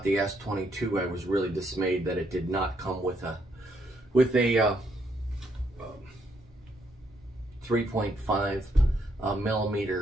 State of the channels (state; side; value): normal; both; correlation 0.74